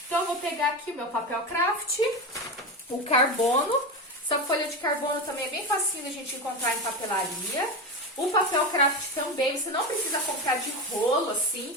Então, eu vou pegar aqui o meu papel craft, o carbono. Essa folha de carbono também é bem facinho a gente encontrar em papelaria. O papel craft também, você não precisa comprar de rolo,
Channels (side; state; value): both; normal; correlation 0.19